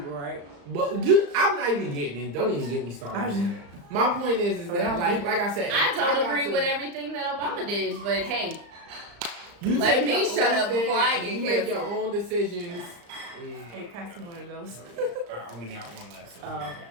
right? But I'm not even getting it. Don't even get me started on that. My point is that like I said, I if don't got agree to- with everything that Obama did, but hey, You Let take me your shut own up before I get you make your canceled. own decisions. Hey, pass me one of those. I only got one left. So. Oh, okay.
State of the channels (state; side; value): late; left; 35 ms